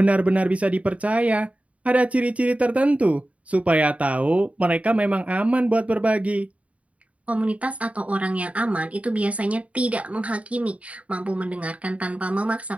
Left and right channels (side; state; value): left; late; 0.066 ms